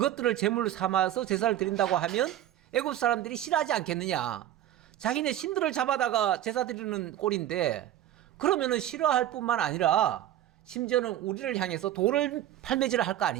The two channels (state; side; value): quieter; left; 12.3 dB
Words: 제물로 삼아서 제사를 드린다고 하면 애굽 사람들이 싫어하지 않겠느냐? 자기네 신들을 잡아다가 제사 드리는 꼴인데 그러면은 싫어할 뿐만 아니라 심지어는 우리를 향해서 돌을 팔매질을 할 거